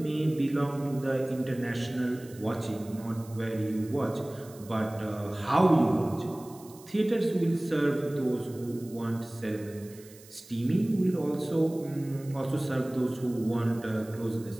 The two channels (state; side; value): noise; right; hiss, 22 dB below the sound